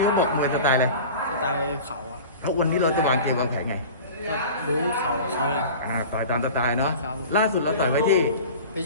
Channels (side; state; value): both; inverted; correlation -0.38